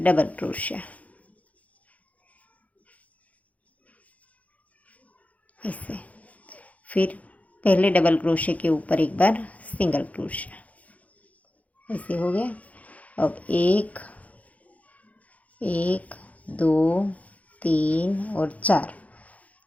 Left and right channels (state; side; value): late; right; 0.069 ms